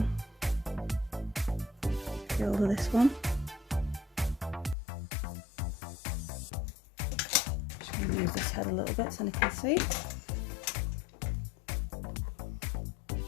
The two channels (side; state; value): right; drops out; at 4.8 s